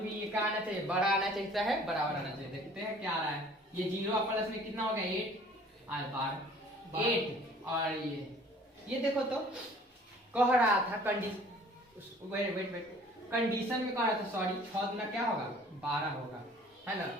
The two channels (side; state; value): both; normal; correlation 0.52